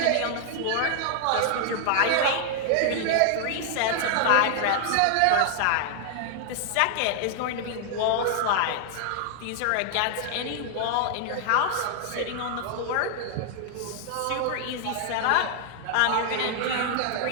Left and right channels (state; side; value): different; both; correlation 0.00